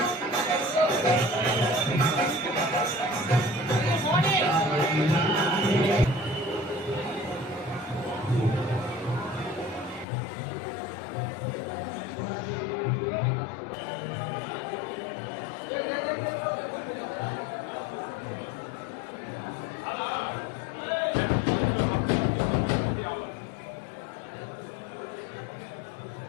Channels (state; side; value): drops out; right; at 10.1 s